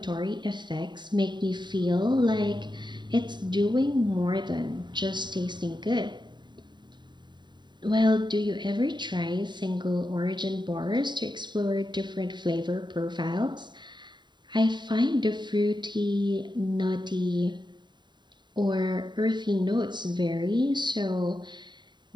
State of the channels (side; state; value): left; late; 0.22 ms